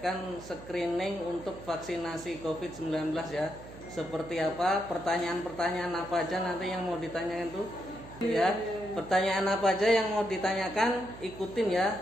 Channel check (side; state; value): right; noise; hum, 16 dB below the sound